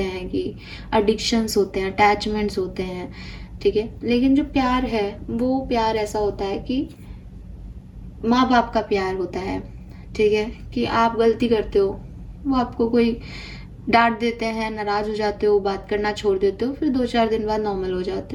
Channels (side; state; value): both; identical; correlation 1.00